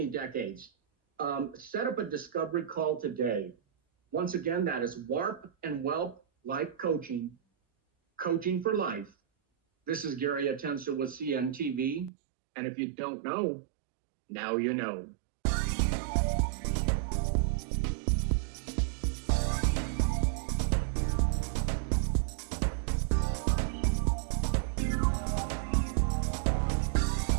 decades. Set up a discovery call today. Once again, that is Warp and Welt Life Coaching, Coaching for Life. This is Gary Atencio with CNTV. And if you don't know, now you know.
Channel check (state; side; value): drops out; left; at 12.1 s